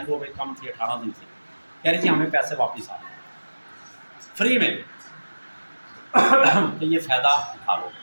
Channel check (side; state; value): both; inverted; correlation -1.00